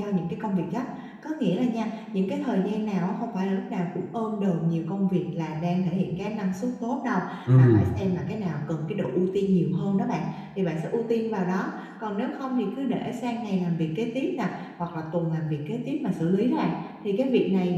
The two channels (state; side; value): identical; both; correlation 1.00